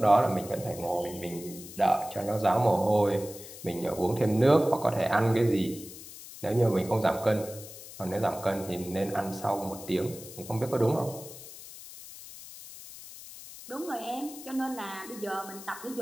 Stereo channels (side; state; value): left; noise; hiss, 15 dB below the sound